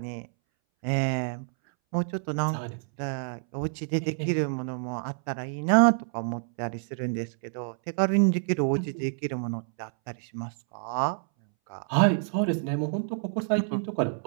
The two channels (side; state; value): left; silent; 59 dB below the other